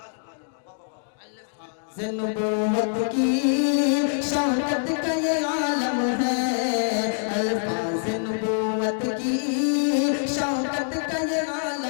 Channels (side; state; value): right; silent; digital silence